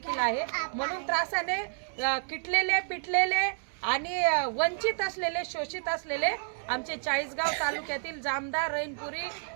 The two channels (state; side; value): silent; left; 58 dB below the other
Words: आहे। म्हणून त्रासाने किटलेले पिटलेले आणि वंचित असलेले शोषित असलेले आमचे चाळीसगाव तालुक्यातील जामदा रहीमपुरी